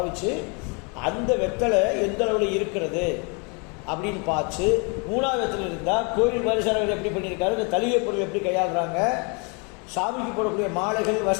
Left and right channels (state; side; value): quieter; right; 33.7 dB